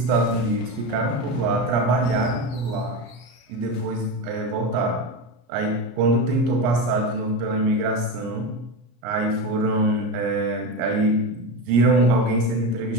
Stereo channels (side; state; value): left; late; 34 ms